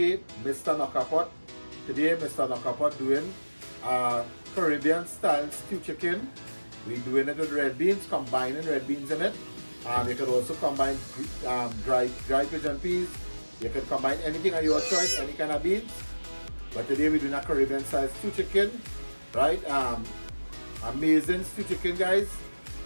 Mr. Knockapot. Today, Mr. Knockapot doing Caribbean style stew chicken. We're doing it with red beans, combining red beans in it. You could also combine dry pigeon peas. You could combine anything of your choice, any kind of beans. But today we're doing a Caribbean style stew chicken, right? Amazing stew chicken, guys.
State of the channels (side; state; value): both; inverted; correlation -1.00